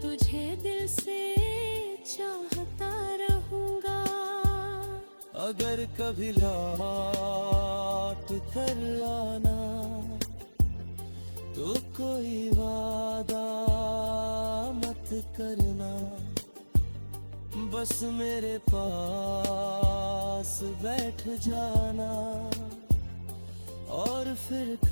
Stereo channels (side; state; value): both; inverted; correlation -1.00